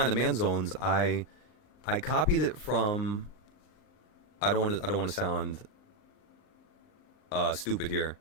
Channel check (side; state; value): right; late; 38 ms